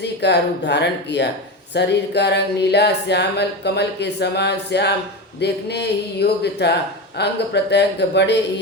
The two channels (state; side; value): normal; both; correlation 0.21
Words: का रूप धारण किया। शरीर का रंग नीला श्यामल कमल के समान श्याम देखने ही योग्य था। अंग प्रत्यंग बड़े